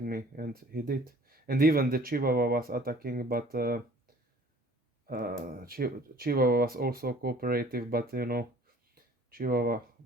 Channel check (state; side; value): normal; both; correlation 0.52